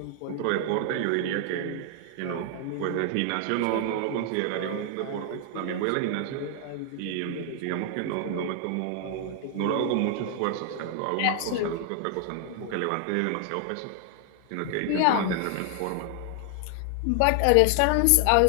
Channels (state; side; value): different; both; correlation 0.00